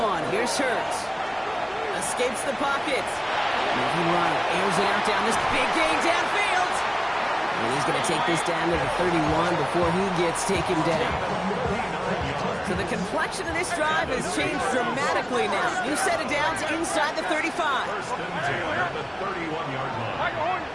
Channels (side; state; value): both; identical; correlation 1.00